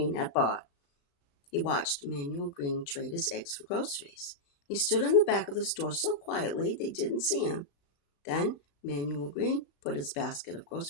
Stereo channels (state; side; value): late; right; 36 ms